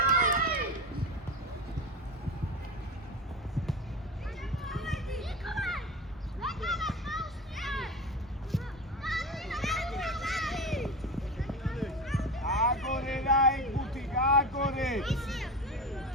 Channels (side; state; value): both; normal; correlation 0.26